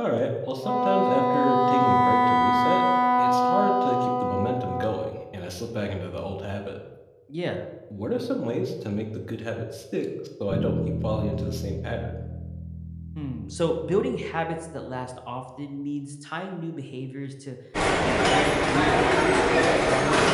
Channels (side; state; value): both; identical; correlation 1.00